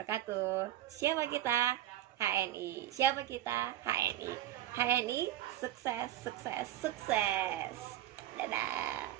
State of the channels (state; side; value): quieter; left; 13.1 dB